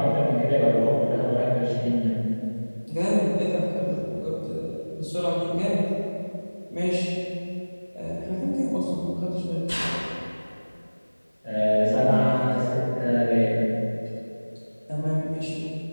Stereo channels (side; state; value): both; inverted; correlation -1.00